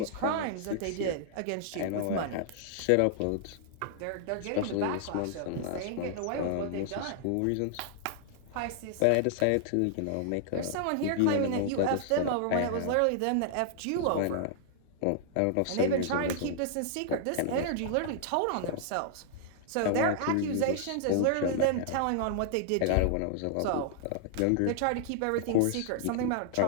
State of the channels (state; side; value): different; both; correlation -0.01